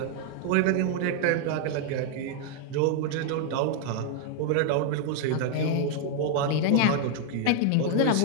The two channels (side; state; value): both; different; correlation 0.00